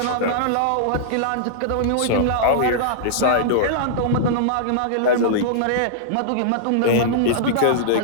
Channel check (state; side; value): different; both; correlation -0.02